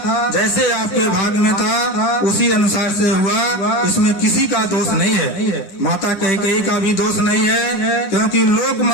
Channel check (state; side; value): late; right; 9.8 ms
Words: जैसे आपके भाग में था, उसी अनुसार से हुआ, इसमें किसी का दोष नहीं है। माता कैकेयी का भी दोष नहीं है, क्योंकि लोक